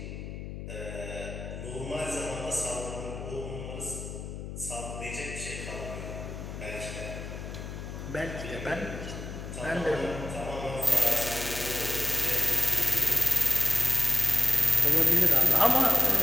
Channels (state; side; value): noise; left; hum, 8 dB below the sound